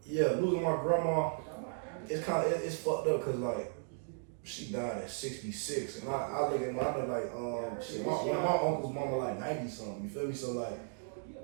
Yeah, losing my grandma, it's fucked up because like she died at 66, and I look at my, I know like shit, one of my uncles' mama like 90 something. You feel me? So like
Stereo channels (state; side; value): silent; left; 54 dB below the other